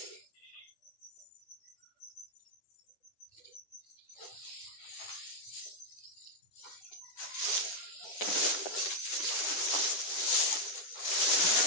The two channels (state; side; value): late; right; 10 ms